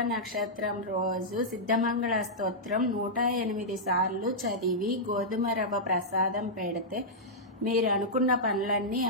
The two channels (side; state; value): both; normal; correlation -0.10